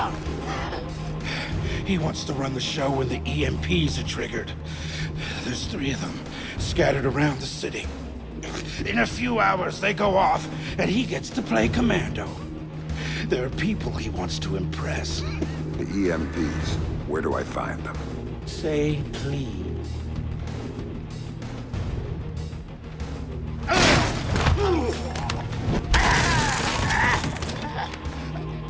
He wants to run the show when the EMPs are triggered. There's 3 of them scattered around the city. In a few hours, they go off, and he gets to play commando. There are people he wants to impress. The EMPs. Where do I find them? Say please.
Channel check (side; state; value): both; identical; correlation 1.00